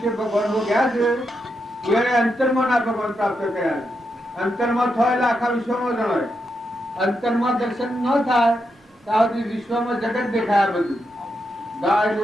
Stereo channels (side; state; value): both; normal; correlation 0.84